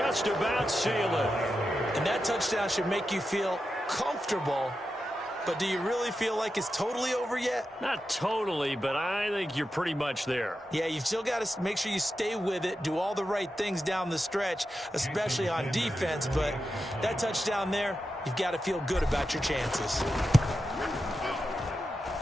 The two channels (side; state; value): both; normal; correlation 0.90